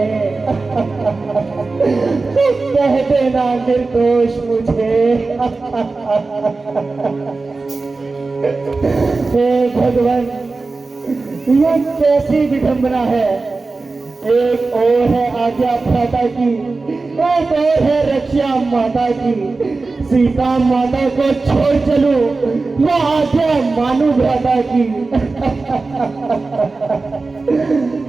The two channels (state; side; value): quieter; left; 3.8 dB